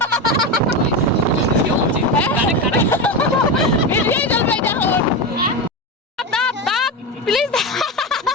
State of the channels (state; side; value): normal; both; correlation 0.17